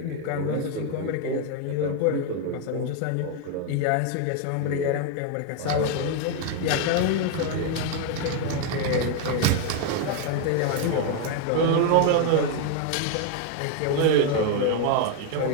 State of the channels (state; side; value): different; both; correlation 0.01